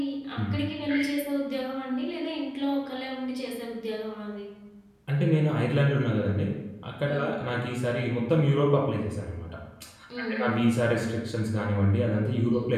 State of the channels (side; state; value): both; identical; correlation 1.00